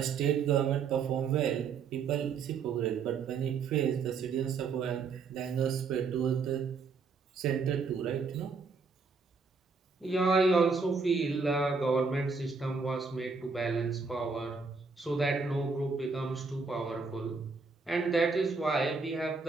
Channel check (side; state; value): left; quieter; 4.9 dB